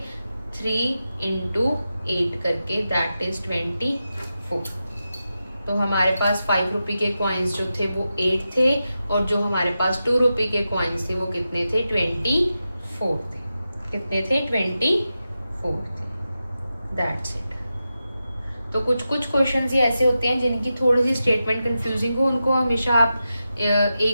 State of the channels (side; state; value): both; inverted; correlation -0.90